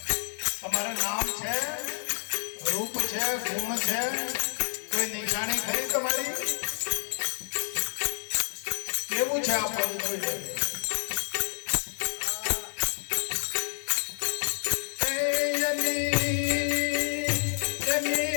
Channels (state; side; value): silent; right; digital silence